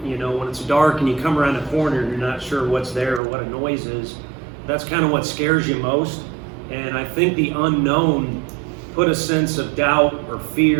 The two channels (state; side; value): drops out; left; at 3.2 s